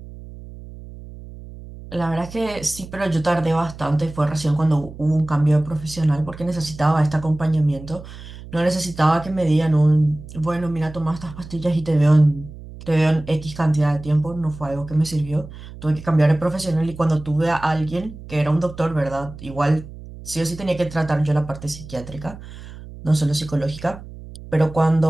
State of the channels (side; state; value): right; noise; hum, 15 dB below the sound